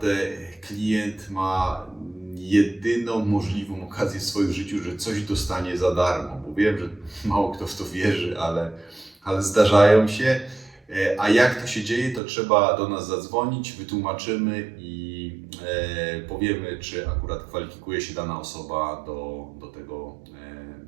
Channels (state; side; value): drops out; left; at 12.2 s